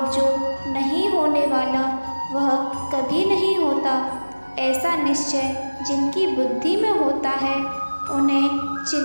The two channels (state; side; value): inverted; both; correlation -1.00